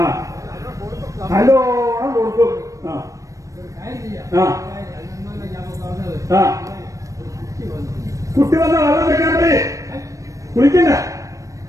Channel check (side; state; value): left; late; 0.16 ms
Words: നല്ലോണം കൊടുക്കും. കുട്ടി വന്ന വെള്ളം വെക്കാൻ മതി, കുളിക്കണ്ട.